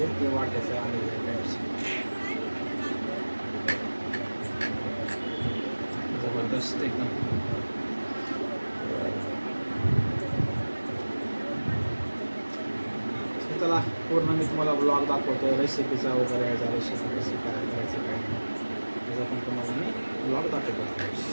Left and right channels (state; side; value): inverted; both; correlation -1.00